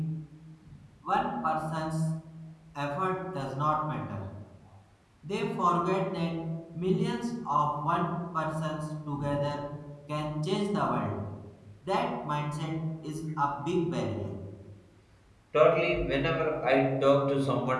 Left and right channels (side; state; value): both; identical; correlation 1.00